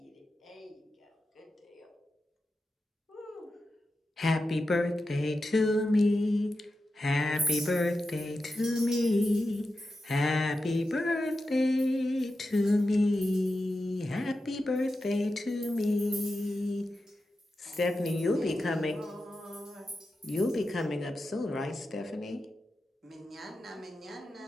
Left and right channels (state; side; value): normal; both; correlation 0.91